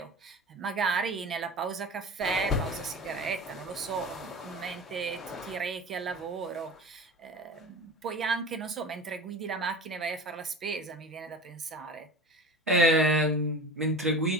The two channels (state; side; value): normal; both; correlation 0.35